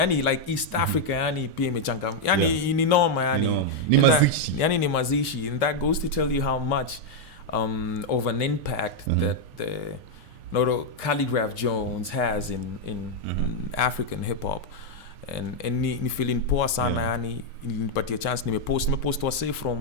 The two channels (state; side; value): normal; both; correlation -0.01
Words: like East Africa, yani pia imechanga, yani ni noma, yani ni mazishi, yani ni mazishi, and that goes to tell you how much of an impact that the Khaligraph Jones has in African hip hop, and ni feeling poa sana, yani nilipatia chance, nimepost wase